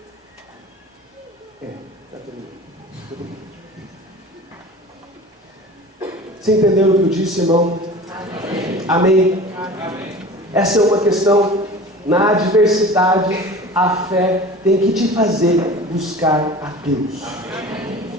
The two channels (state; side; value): normal; both; correlation 0.39